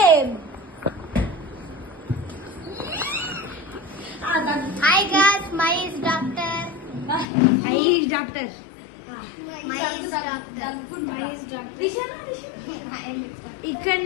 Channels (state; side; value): drops out; right; at 7.2 s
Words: Hi guys, my is doctor.